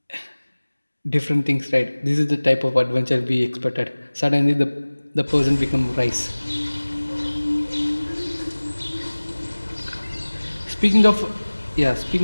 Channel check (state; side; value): inverted; both; correlation -1.00